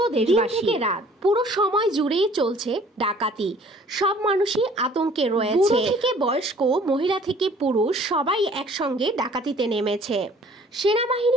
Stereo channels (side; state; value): both; normal; correlation 0.54